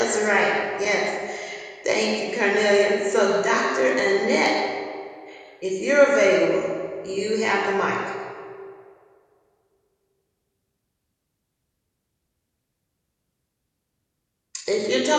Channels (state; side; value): identical; both; correlation 1.00